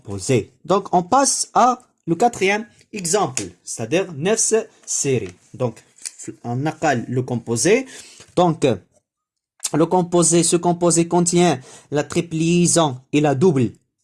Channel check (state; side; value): identical; both; correlation 1.00